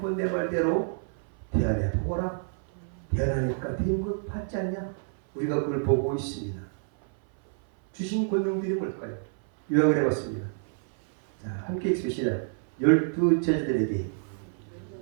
내 말대로 대안해 보거라. 대안하니까 된 것 받지 않냐? 우리가 그걸 보고 있습니다. 주신 권능들이 뭘까요? 요약을 해봤습니다. 자, 함께 읽으시다. 12제자들에게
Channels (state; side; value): silent; left; 57 dB below the other